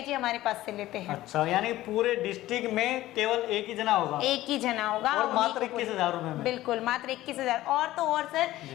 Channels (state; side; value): quieter; right; 15.7 dB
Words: हमारे पास से लेते हैं। अच्छा, यानी पूरे डिस्ट्रिक्ट में केवल एक ही जना होगा? एक ही जना होगा और मात्र 21,000 रुपए में? बिल्कुल, मात्र 21,000। और तो और